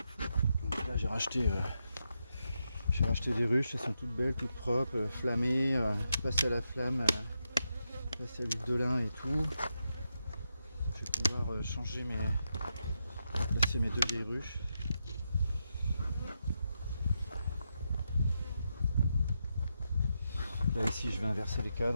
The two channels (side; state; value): both; inverted; correlation -0.85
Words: Donc là j'ai racheté des ruches, elles sont toutes belles, toutes propres, flammées, passées à la flamme, passées à l'huile de lin et tout. Je vais pouvoir placer mes deux vieilles ruches. Là ici je vais inverser les